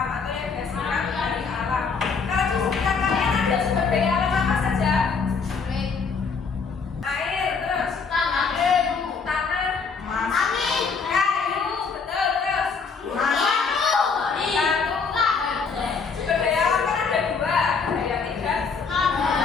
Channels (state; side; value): quieter; right; 5.2 dB